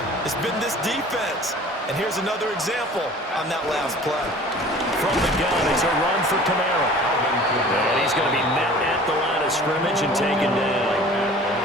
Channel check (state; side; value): normal; both; correlation 0.45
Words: It's been this defense. And here's another example on that last play. From the gun, it's a run for Kamara. And he's going to be met at the line of scrimmage and taken down.